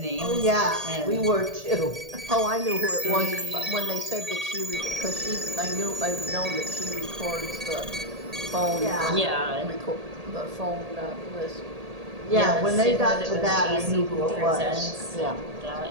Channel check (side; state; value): left; late; 1.8 ms